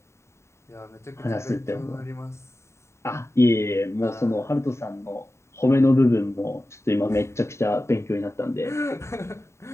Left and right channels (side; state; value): right; late; 0.13 ms